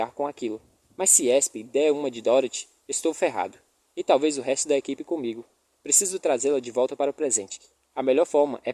com aquilo. Mas se Esp der uma de Dorothy, estou ferrado. E talvez o resto da equipe comigo. Preciso trazê-la de volta para o presente. A melhor forma é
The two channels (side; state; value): both; identical; correlation 1.00